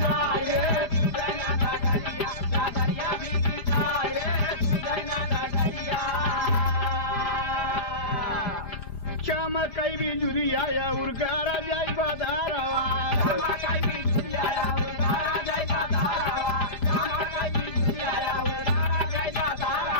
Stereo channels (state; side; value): late; right; 4.7 ms